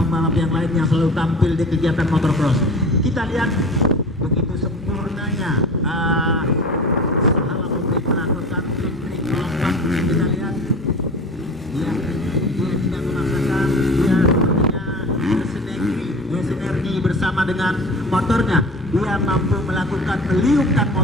yang lain yang selalu tampil di kegiatan motocross. Kita lihat begitu sempurnanya Sahala Obeng melakukan trik lompat. Kita lihat dia tidak memaksakan, dia sepertinya bersinergi bersama dengan motornya. Dia mampu melakukan meliupkan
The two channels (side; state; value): both; normal; correlation 0.37